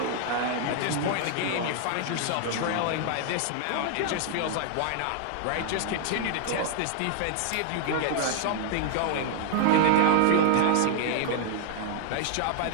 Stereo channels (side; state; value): both; different; correlation 0.00